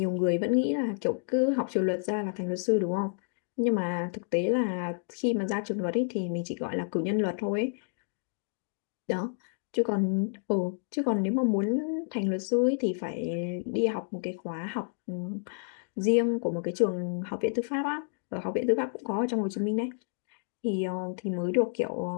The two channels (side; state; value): right; silent; digital silence